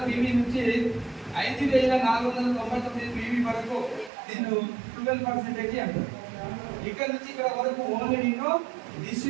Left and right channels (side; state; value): left; drops out; at 4.1 s